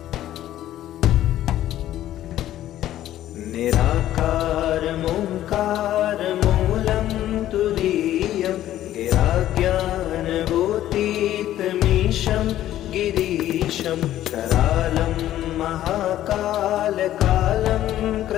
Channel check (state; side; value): quieter; right; 13.0 dB